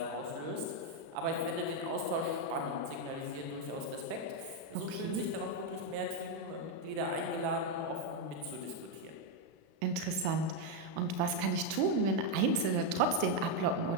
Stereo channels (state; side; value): late; left; 36 ms